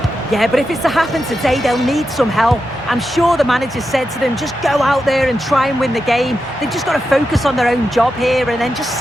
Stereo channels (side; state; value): both; normal; correlation 0.89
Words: Yeah, but if it's to happen today, they'll need some help. I'm sure the manager said to them, just go out there and try and win the game. They've just got to focus on their own job here and then just